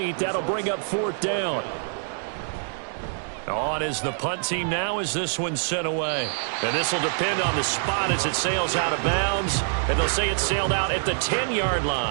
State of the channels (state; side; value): silent; left; digital silence